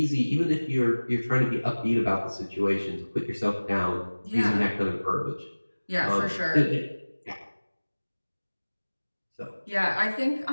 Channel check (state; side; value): inverted; both; correlation -1.00